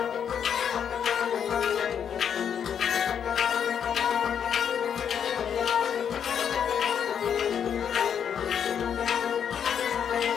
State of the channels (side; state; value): right; quieter; 8.1 dB